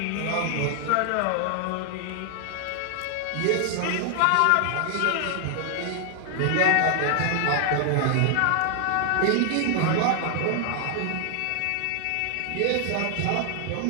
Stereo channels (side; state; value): both; different; correlation 0.00